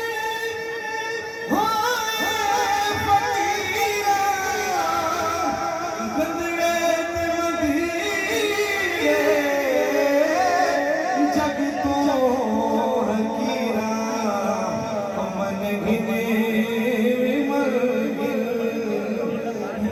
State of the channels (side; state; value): both; identical; correlation 1.00